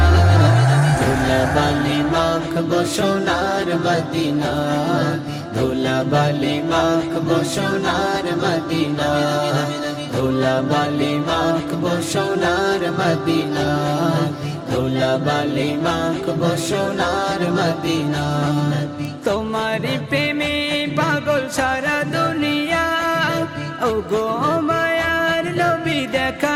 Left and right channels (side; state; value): both; identical; correlation 1.00